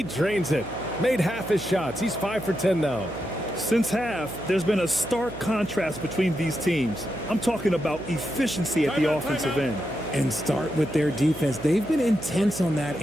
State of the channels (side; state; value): right; noise; hum, 13 dB below the sound